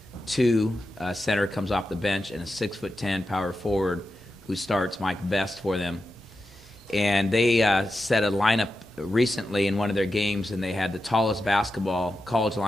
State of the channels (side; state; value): both; normal; correlation 0.90